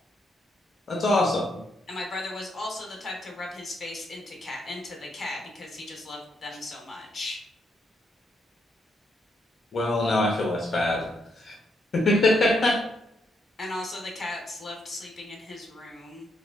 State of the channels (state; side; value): normal; both; correlation 0.77